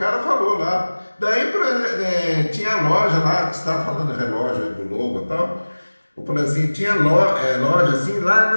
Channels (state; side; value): inverted; both; correlation -1.00